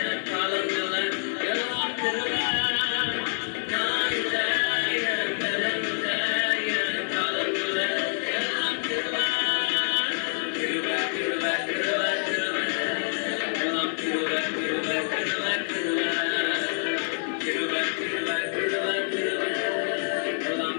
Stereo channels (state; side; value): silent; right; digital silence